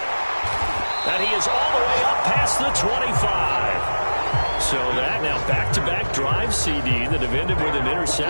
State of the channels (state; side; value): inverted; both; correlation -1.00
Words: And he is all the way up past the 25. So that now back-to-back drive, CD, that have ended with an